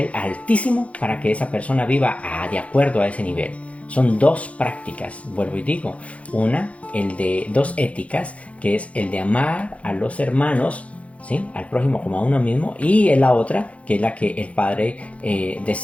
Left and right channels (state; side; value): late; right; 0.064 ms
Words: altísimo para que esa persona viva de acuerdo a ese nivel. Son dos prácticas, vuelvo y digo. Dos éticas, que es el de amar a los hermanos, ¿sí?, al prójimo como a uno mismo, y la otra, que es la que el Padre